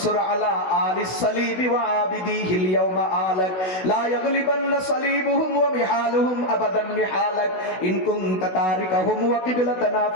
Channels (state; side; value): late; right; 16 ms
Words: على آل الصليب وعابديه اليوم آلك لا يغلبن صليبهم ومحالهم أبدا محالك إن كنت تاركهم وقبلتنا